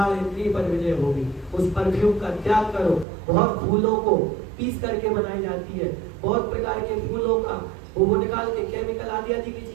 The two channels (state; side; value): drops out; left; at 3.1 s